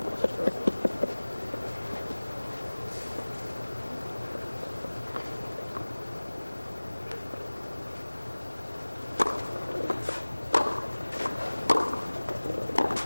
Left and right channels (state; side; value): inverted; both; correlation -1.00